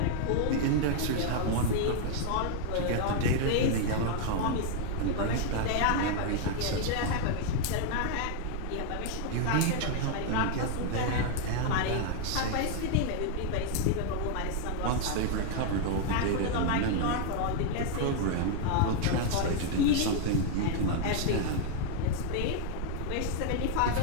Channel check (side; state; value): both; different; correlation 0.00